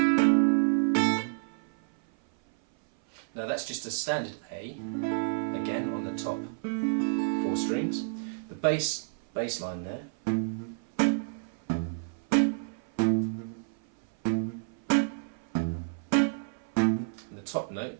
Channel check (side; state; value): left; silent; 56 dB below the other